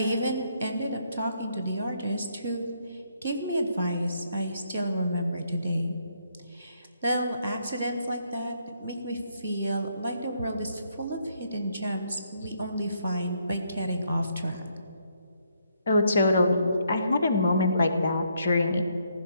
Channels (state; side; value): inverted; both; correlation -0.73